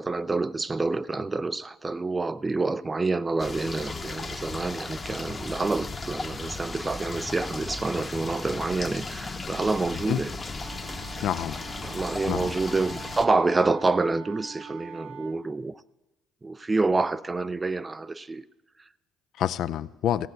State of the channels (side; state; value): both; normal; correlation 0.89